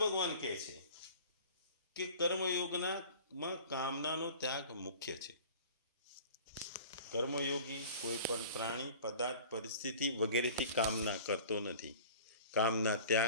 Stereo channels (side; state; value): both; inverted; correlation -0.43